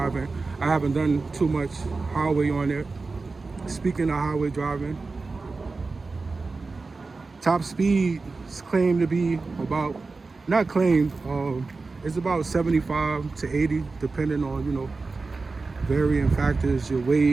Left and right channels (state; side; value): quieter; left; 3.9 dB